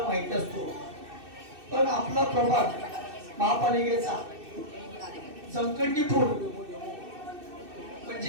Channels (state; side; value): late; left; 2.6 ms